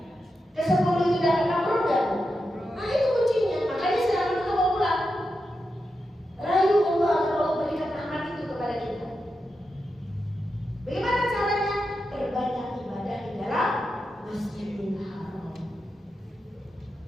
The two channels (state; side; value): normal; both; correlation 0.88